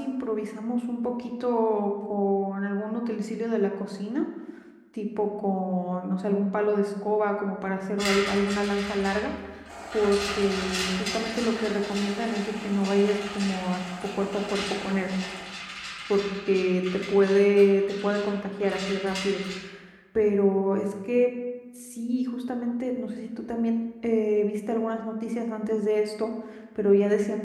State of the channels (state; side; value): identical; both; correlation 1.00